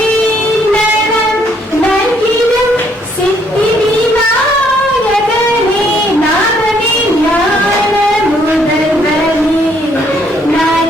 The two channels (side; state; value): both; normal; correlation 0.68